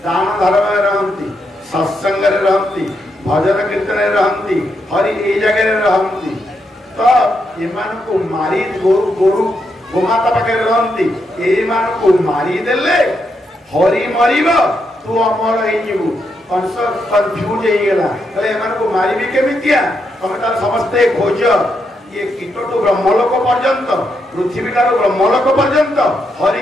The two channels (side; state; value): both; normal; correlation 0.81